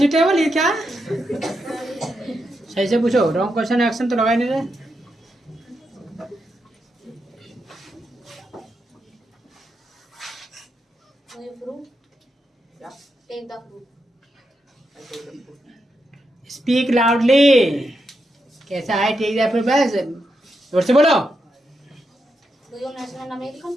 ये क्या सही से पूछो wrong question action तो लगा ही नहीं रहे Do you fruit? Yeah. Take the fruit. I take the food. Speak loudly कैसा है ठीक है फिर बस जोर से बोलो Do you national American?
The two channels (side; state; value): both; normal; correlation 0.84